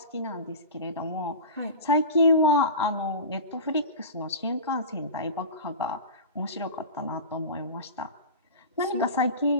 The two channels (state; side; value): inverted; both; correlation -0.30